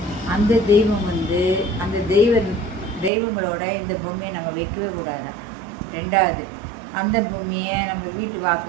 அந்த தெய்வம் அந்த தெய்வங்களோட இந்த பொம்மையை நம்ம வைக்கவே கூடாதான். ரெண்டாவது, அந்த பொம்மையை நம்ம வீட்டு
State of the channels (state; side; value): drops out; left; at 3.1 s